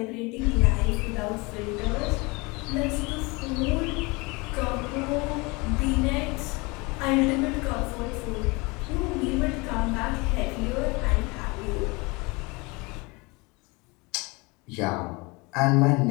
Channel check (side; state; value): right; quieter; 26.3 dB